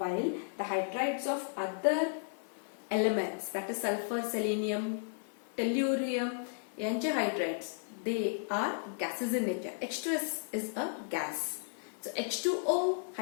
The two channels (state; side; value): silent; right; digital silence